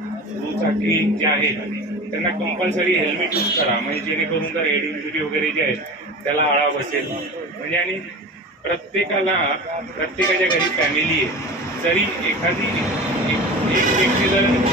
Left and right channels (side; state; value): both; normal; correlation 0.33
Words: दुचाकी जे आहेत त्यांना कंपल्सरी हेल्मेट यूज करा, म्हणजे जेणेकरून जर हेड इंजुरी वगैरे जे आहे त्याला आळा बसेल. म्हणजे आणि प्रत्येकाच्या घरी फॅमिली आहे, जरी एखादी एक व्यक्ती जर